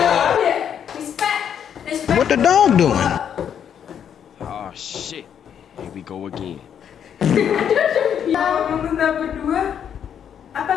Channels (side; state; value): right; quieter; 8.6 dB